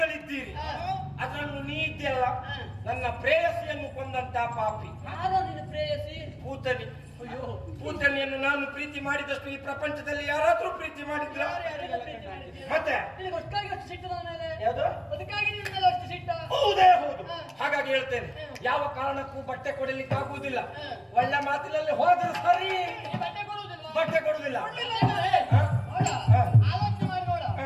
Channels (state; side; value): identical; both; correlation 1.00